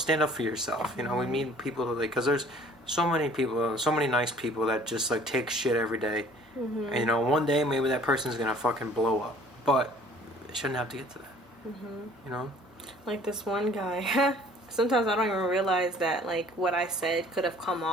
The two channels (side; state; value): both; normal; correlation 0.53